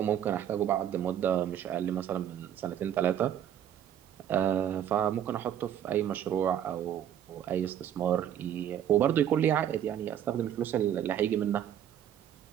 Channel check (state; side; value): quieter; left; 10.1 dB